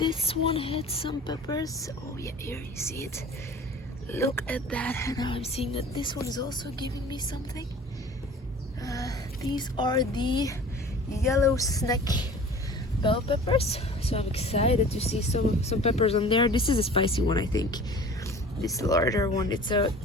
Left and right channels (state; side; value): normal; both; correlation 0.44